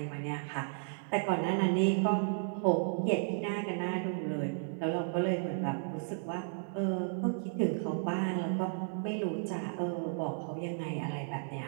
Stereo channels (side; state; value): left; silent; digital silence